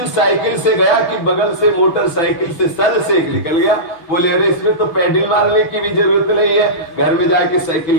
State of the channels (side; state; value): right; late; 6.1 ms